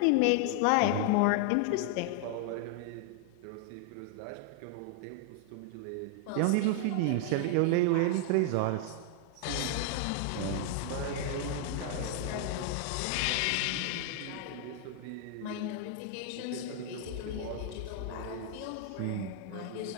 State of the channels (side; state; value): both; different; correlation 0.00